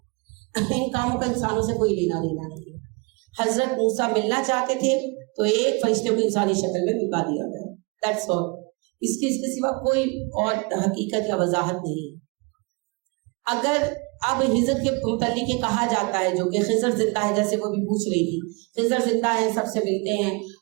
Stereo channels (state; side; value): quieter; left; 29.9 dB